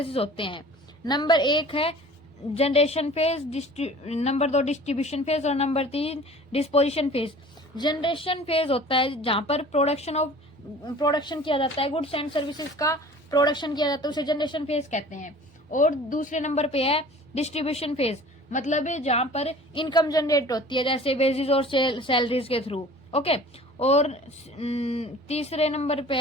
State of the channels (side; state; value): both; normal; correlation 0.45